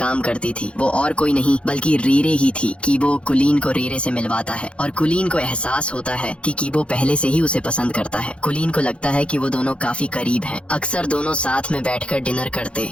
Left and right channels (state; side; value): late; right; 0.059 ms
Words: करती थी। वो और कोई नहीं बल्कि रीरे ही थी। कीबो कुलीन को रीरे से मिलवाता है और कुलीन को एहसास होता है कि कीबो पहले से ही उसे पसंद करता है। कुलीन को लगता है कि वो दोनों काफी करीब हैं। अक्सर दोनों साथ में बैठकर डिनर